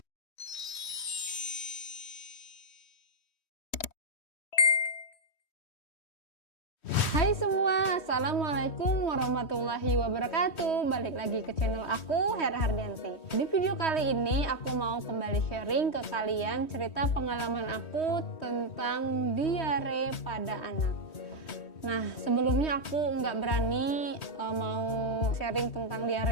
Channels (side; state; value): right; late; 3.1 ms